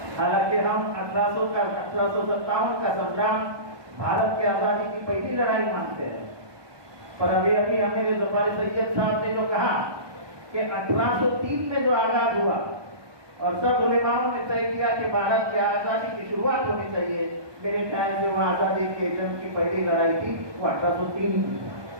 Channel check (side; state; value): left; late; 1.2 ms